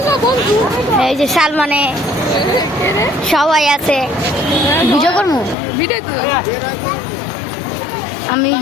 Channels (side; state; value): right; drops out; at 5.6 s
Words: এই যে সালমানে সবাই আছে। ভিডিও করবো, আমি